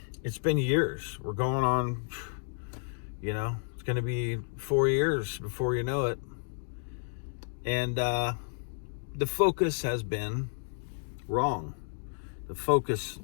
It's been years. We're going on, it's going to be 4 years before you know it. And the focus has been wrong.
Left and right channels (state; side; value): silent; right; digital silence